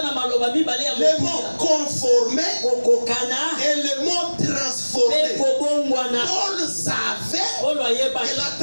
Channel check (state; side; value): inverted; both; correlation -1.00